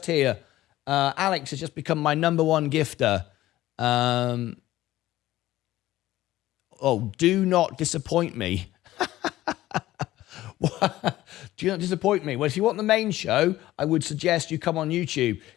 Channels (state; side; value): quieter; right; 15.5 dB